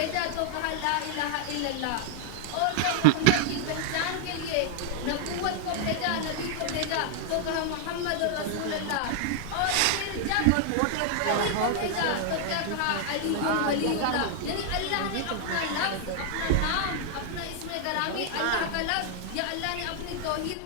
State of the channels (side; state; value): both; different; correlation -0.01